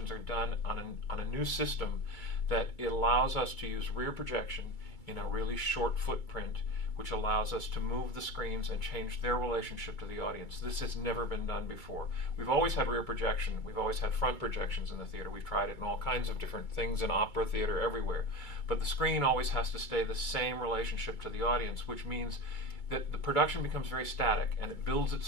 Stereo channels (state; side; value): late; right; 2.3 ms